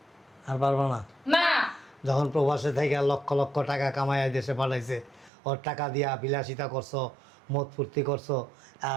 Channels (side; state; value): left; drops out; at 5.3 s